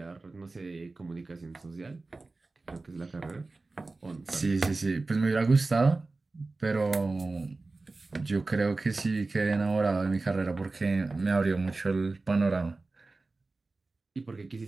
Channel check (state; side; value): quieter; left; 3.5 dB